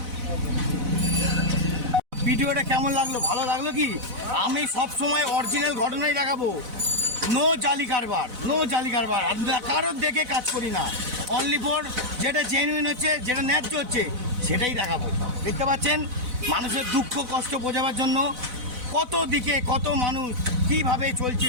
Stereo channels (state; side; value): late; left; 4.0 ms